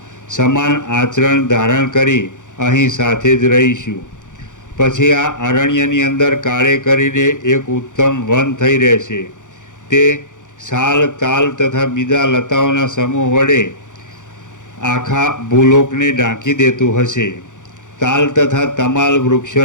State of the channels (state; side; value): late; right; 0.86 ms